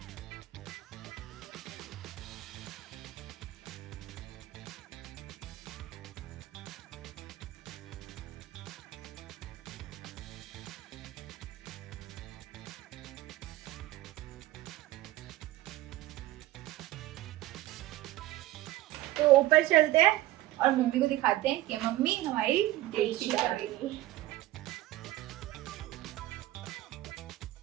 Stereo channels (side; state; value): left; quieter; 16.0 dB